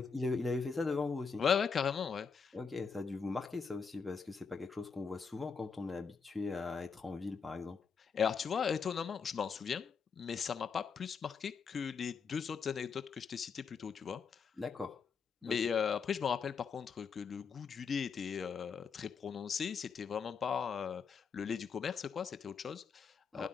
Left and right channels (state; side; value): quieter; right; 5.7 dB